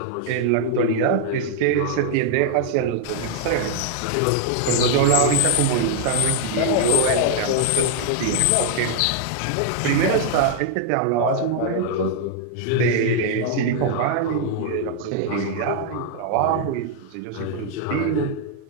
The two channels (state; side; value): different; both; correlation 0.00